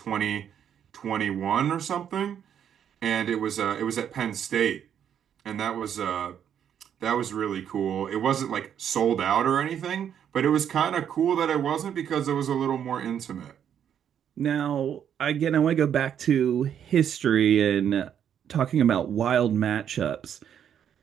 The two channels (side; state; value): left; quieter; 9.0 dB